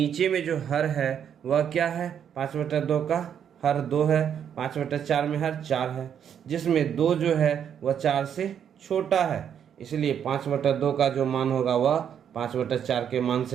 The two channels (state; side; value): quieter; left; 8.6 dB